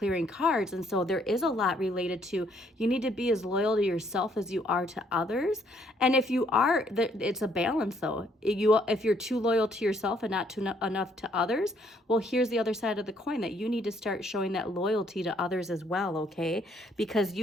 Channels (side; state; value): both; normal; correlation 0.67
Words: cards. And so there is a lot related to, you need to be as loyal to yourself as you are to others. And if you are, it's a balance though. If you're too loyal to yourself and not too enough to others, well, here's the other side of the coin, that you need to start showing that loyalty to others as well, okay? Because